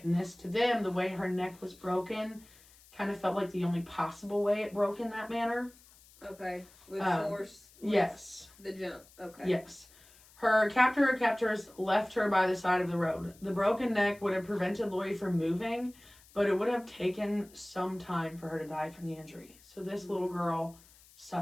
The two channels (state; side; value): noise; left; hiss, 25 dB below the sound